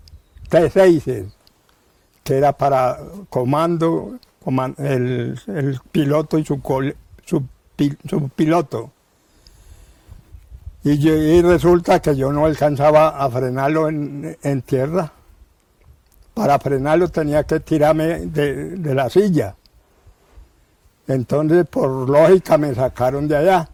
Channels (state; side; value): identical; both; correlation 1.00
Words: T-6, que era para comando, el piloto y su piloto. Y resulta que yo no alcanzaba a frenarlo en tierra. Para frenarlo tenía que tirarme de la silla. Entonces, por lógica, me sacaron de allá.